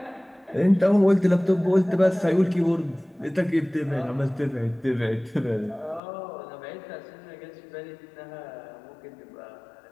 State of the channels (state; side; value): drops out; right; at 6.0 s